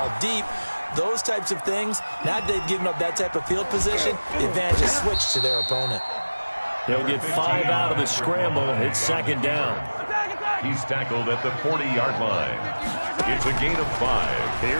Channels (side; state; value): both; inverted; correlation -1.00